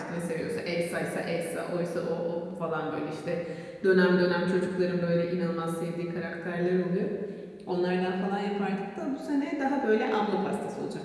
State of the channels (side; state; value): both; identical; correlation 1.00